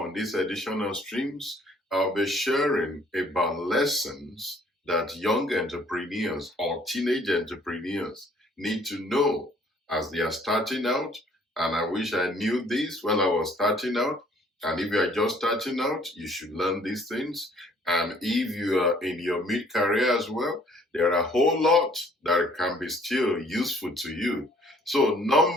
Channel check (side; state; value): both; normal; correlation 0.59